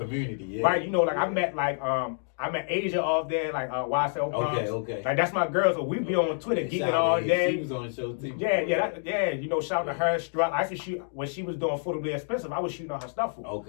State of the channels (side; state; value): right; silent; digital silence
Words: yeah. Right, you know, like I met Asia off there, like YSL Proms. Okay. Like that's my girl, so we be on Twitter geeking all day. She was on the show too. You know, shout out to her. Strut. I used to shoot when she was doing Affordably Expensive. I was shooting on her stuff for.